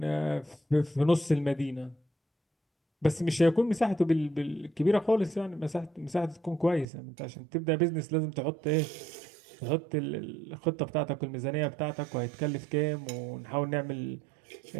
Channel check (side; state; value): left; drops out; at 6.9 s